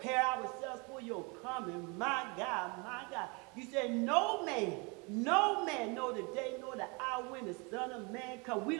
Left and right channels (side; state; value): left; quieter; 30.2 dB